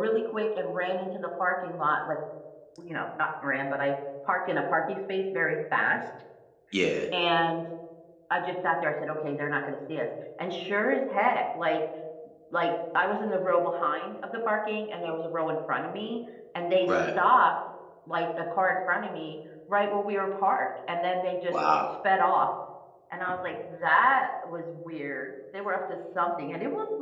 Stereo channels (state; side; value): identical; both; correlation 1.00